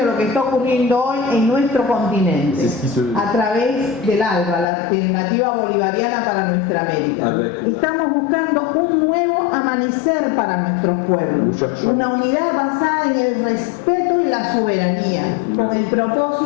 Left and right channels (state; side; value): drops out; right; at 4.7 s